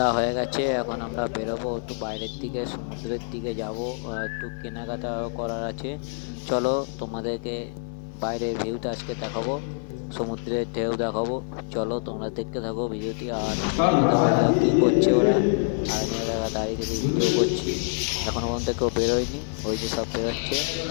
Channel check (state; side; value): silent; right; 61 dB below the other